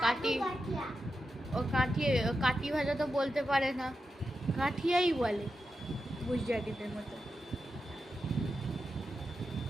কাটি কাঠিয়া। ও কাঠি ভাজা তো বলতে পারে না, কাঠিয়াই বলে গুজরাটিদের মতো।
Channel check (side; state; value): both; normal; correlation 0.89